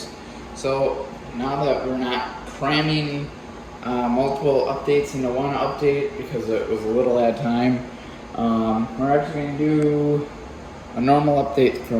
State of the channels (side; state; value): both; identical; correlation 1.00